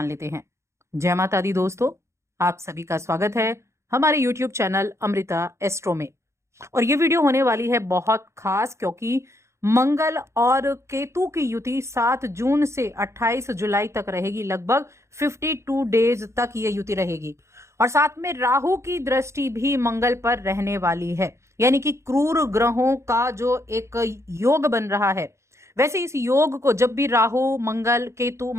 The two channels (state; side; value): late; left; 0.14 ms